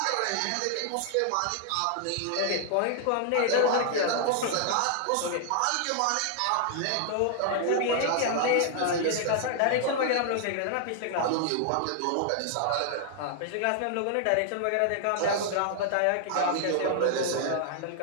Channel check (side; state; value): both; different; correlation 0.00